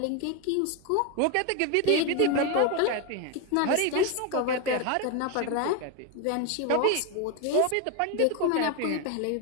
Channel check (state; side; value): different; both; correlation 0.02